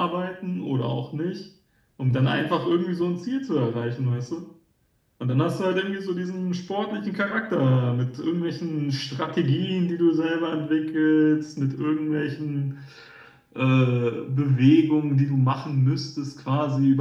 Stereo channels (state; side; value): identical; both; correlation 1.00